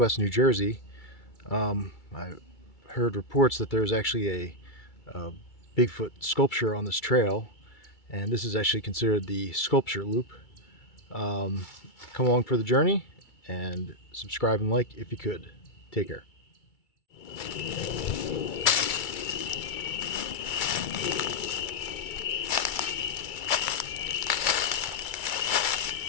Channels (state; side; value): late; right; 2.3 ms